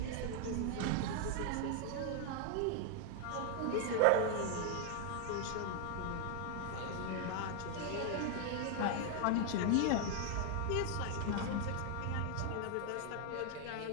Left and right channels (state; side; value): different; both; correlation 0.00